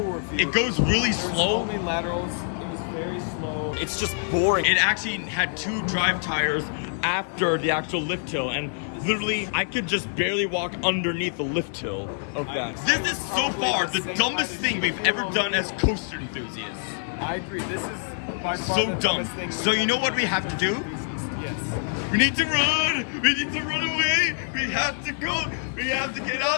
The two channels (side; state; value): right; silent; digital silence